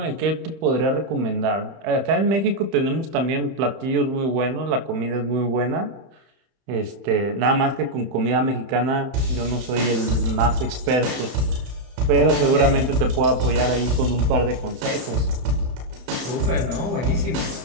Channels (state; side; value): late; left; 30 ms